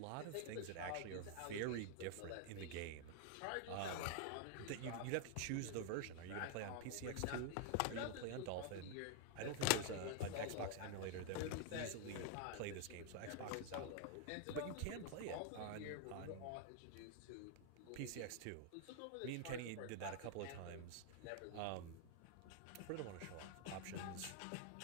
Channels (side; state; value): both; different; correlation 0.00